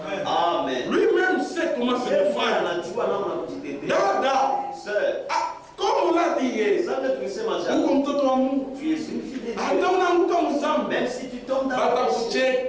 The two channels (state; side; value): identical; both; correlation 1.00